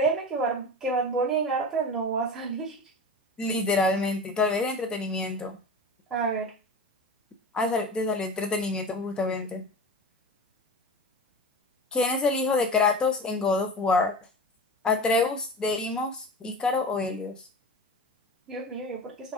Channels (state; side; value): normal; both; correlation 0.30